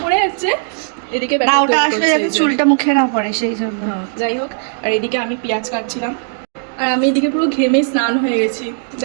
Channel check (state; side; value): silent; left; digital silence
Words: পরে হচ্ছে। এদিকে চুলটা মুখে না পড়ে সেই জন্য, যাই হোক। আর এদিকে আমি পেঁয়াজ কাটছিলাম, আর আমি এদিকে পুরো ঘেমে স্নান হয়ে গেছি,